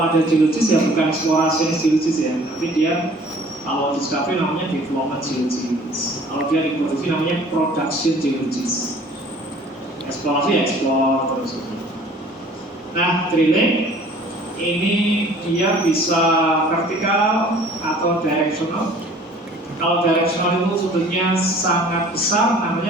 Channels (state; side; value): normal; both; correlation 0.51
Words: ada geologis ya bukan eksplorasi geologis ya, nanti dia Kalau discovery namanya development geologist. Kalau dia diproduksi namanya production geologist. Eksplorasi explore terus. Nah, drilling ini dia bisa vertikal atau directional. Kalau directional itu sudutnya sangat besar,